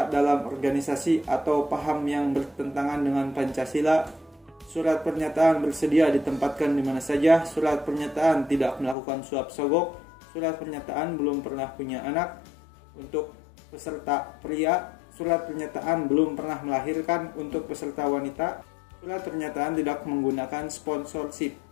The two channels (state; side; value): drops out; right; at 9.0 s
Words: dalam organisasi atau paham yang bertentangan dengan Pancasila. Surat pernyataan bersedia ditempatkan di mana saja. Surat pernyataan tidak melakukan suap sogok. Surat pernyataan belum pernah punya anak untuk peserta pria. Surat pernyataan belum pernah melahirkan untuk peserta wanita. Surat pernyataan tidak menggunakan sponsorship.